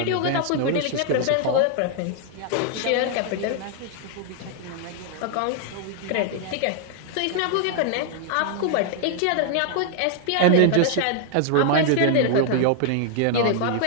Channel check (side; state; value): both; different; correlation 0.00